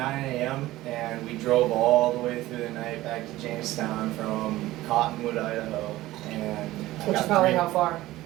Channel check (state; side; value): quieter; left; 16.7 dB